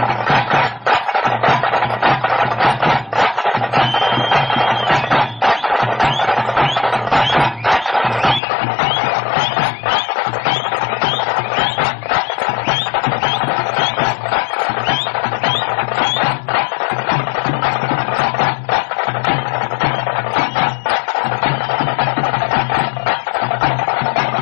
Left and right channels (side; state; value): right; drops out; at 8.4 s